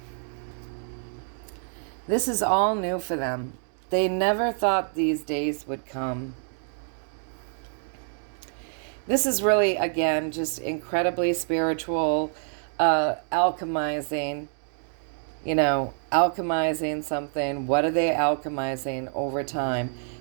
This is all new for them. They never thought these days would come. This is really, again, just incredibly spiritual, alchemizing, you know, alchemizing something. What are they alchemizing over time?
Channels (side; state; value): left; silent; 60 dB below the other